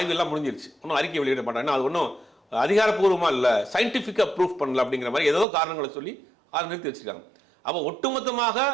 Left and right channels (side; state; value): left; drops out; at 5.5 s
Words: எல்லாம் முடிஞ்சிருச்சு, ஒன்றும் அறிக்கை வெளியிட மாட்டாங்கன்னா அது ஒன்றும் அதிகாரப்பூர்வமாக இல்லை, சயின்டிஃபிக்காக ப்ரூஃப் பண்ணல அப்படிங்கிற மாதிரி ஏதோ காரணங்களை சொல்லி அதை நிறுத்தி வச்சுருக்காங்க. அப்போ ஒட்டுமொத்தமாக